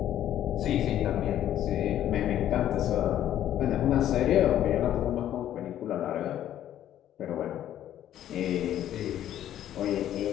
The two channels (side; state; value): right; quieter; 11.6 dB